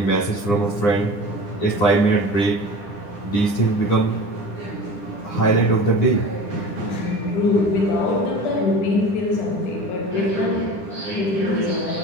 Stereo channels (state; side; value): late; right; 9.8 ms